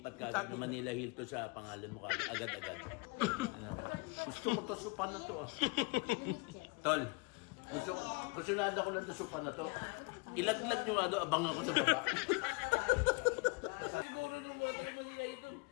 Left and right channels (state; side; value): quieter; right; 27.3 dB